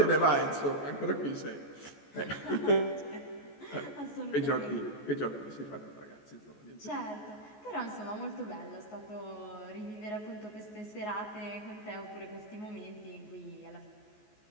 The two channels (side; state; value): right; late; 14 ms